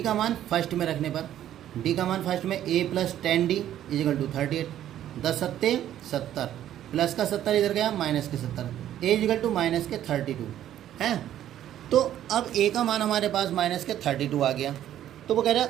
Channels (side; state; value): left; quieter; 11.7 dB